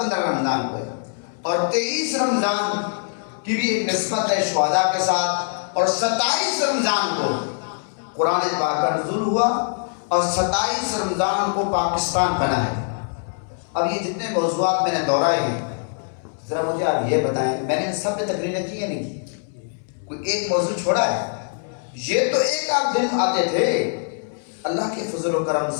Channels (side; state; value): right; silent; 64 dB below the other